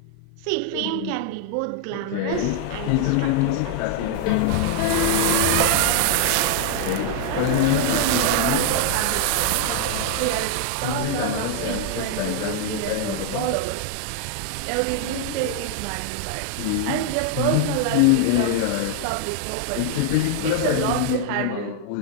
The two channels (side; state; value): both; different; correlation 0.00